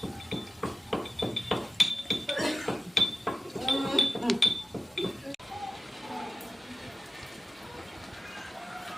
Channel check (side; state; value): both; normal; correlation 0.92